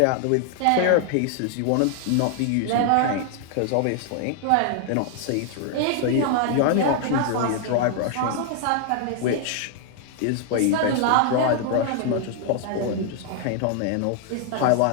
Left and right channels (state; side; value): different; both; correlation 0.00